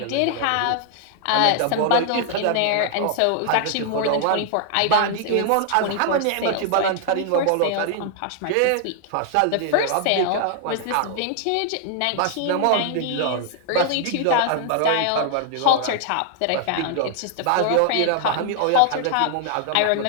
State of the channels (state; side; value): different; both; correlation 0.00